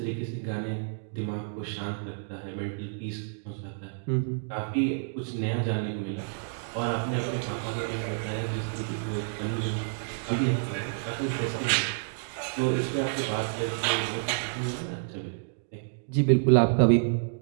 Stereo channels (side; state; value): left; silent; digital silence